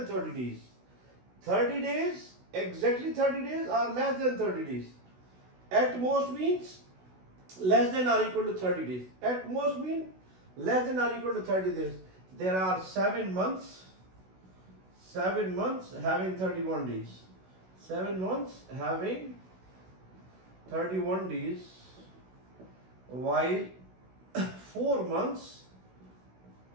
30 days. 30 days, exactly 30 days or less than 30 days. At most means less than or equal to 30 days. At most means less than or equal to 30 days. There are 7 months having 31 days. 7 months having 31 days, while 4 months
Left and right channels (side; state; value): left; late; 16 ms